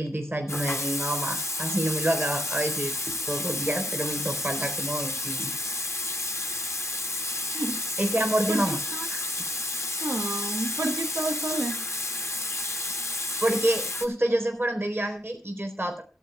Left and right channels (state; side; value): normal; both; correlation 0.73